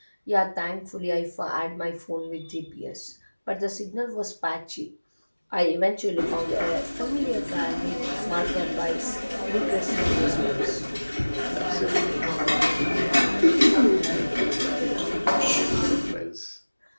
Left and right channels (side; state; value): both; inverted; correlation -1.00